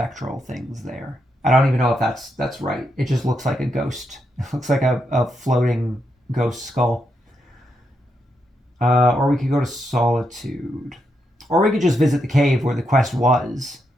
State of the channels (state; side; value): normal; both; correlation 0.82